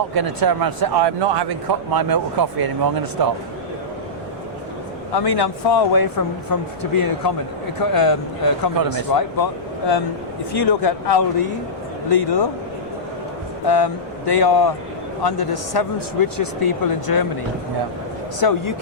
going to turn around and say, I'm not having my milk or coffee anymore, I'm going to stop. I mean, I'm far away from to being a economist, right? But if you look at Aldi, Lidl, they are under the 7th richest people in Germany. Yeah. So you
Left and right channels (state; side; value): noise; left; rumble, 25 dB below the sound